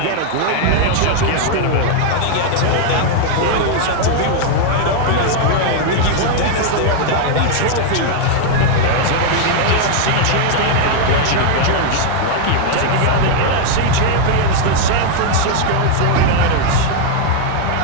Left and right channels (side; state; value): both; different; correlation 0.00